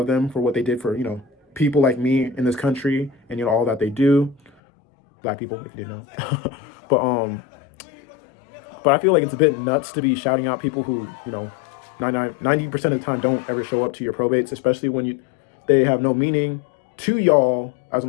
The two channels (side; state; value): right; drops out; at 4.5 s